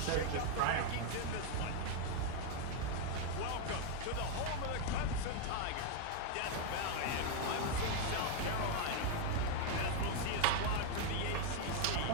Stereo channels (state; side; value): different; both; correlation 0.01